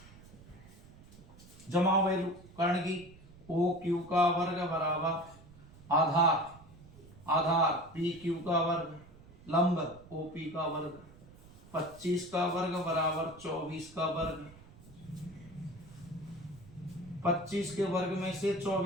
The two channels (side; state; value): right; noise; rumble, 21 dB below the sound